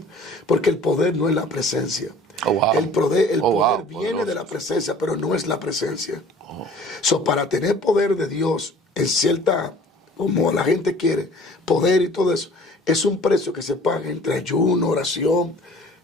Porque el poder no es la presencia. Oh, wow. El poder wow, viene poderoso. de la presencia, pero no es la presencia. So, para tener poder de Dios en cierta, como la gente quiere, poder y todo eso, es un precio que se paga entre ayuno, oración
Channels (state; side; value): normal; both; correlation 0.49